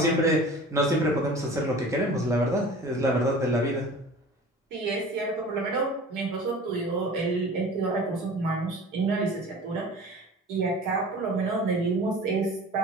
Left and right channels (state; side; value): normal; both; correlation 0.41